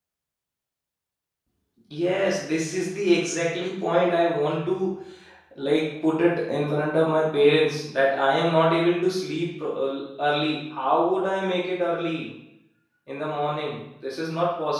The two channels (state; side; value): identical; both; correlation 1.00